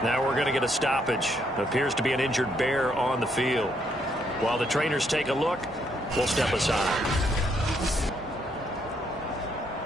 Now we're going to get a stoppage. Appears to be an injured bear on the field. While the trainers take a look, we'll step aside.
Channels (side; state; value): both; normal; correlation 0.73